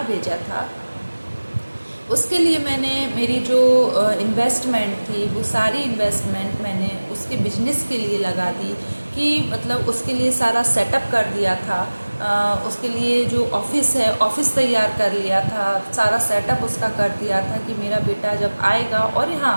भेजा था। उसके लिए मैंने मेरी जो इन्वेस्टमेंट थी वो सारी इन्वेस्टमेंट मैंने उसके बिजनेस के लिए लगा दी, कि मतलब उसके लिए सारा सेटअप कर दिया था। उसके लिए जो ऑफिस है, ऑफिस तैयार कर लिया था, सारा सेटअप उसका कर दिया था कि मेरा बेटा जब आएगा और यहाँ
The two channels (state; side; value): inverted; both; correlation -1.00